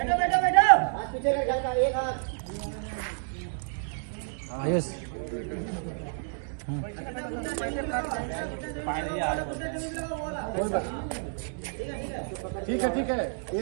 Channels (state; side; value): silent; left; digital silence